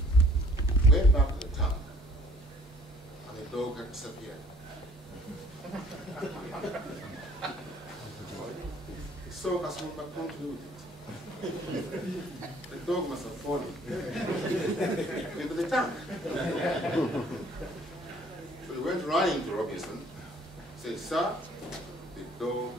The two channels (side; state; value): both; normal; correlation 0.57